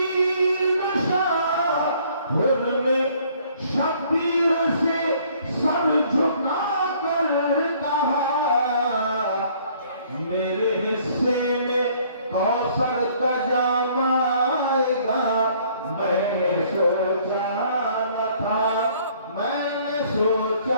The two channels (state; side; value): inverted; both; correlation -0.60